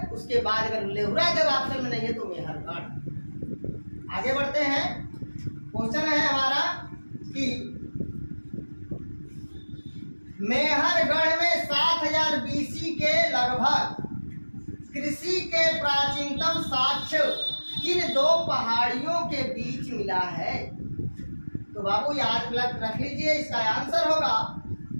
उसके बाद अगर लेहुरा देव ऑप्शन में नहीं है तो मेहरगढ़। आगे बढ़ते हैं। क्वेश्चन है हमारा कि मेहरगढ़ में 7000 बीसी के लगभग कृषि के प्राचीनतम साक्ष्य किन दो पहाड़ियों के बीच मिला है? तो बाबू याद रख लीजिए, इसका आंसर होगा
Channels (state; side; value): inverted; both; correlation -1.00